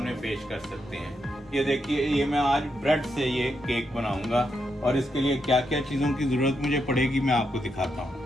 पेश कर सकते हैं। ये देखिए, ये मैं आज ब्रेड से ये केक बनाऊंगा और इसके लिए क्या क्या चीज़ों की ज़रूरत मुझे पड़ेगी मैं आपको दिखाता हूँ।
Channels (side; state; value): both; normal; correlation 0.82